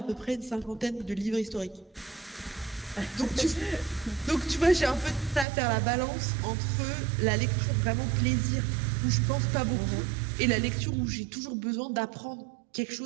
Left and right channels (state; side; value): drops out; left; at 5.5 s